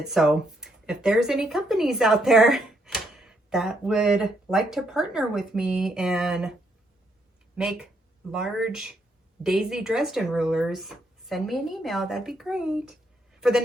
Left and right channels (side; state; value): both; normal; correlation 0.74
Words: So if there's any companies out there that would like to partner with me and make large Daisy Dresden rulers, send me an email. That'd be great. For the